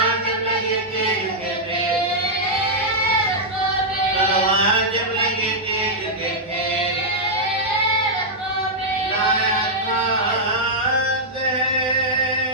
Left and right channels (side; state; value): both; normal; correlation -0.06